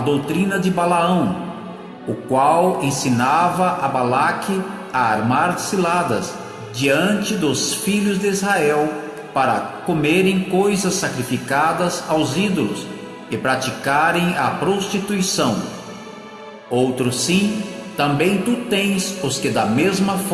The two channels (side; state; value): both; identical; correlation 1.00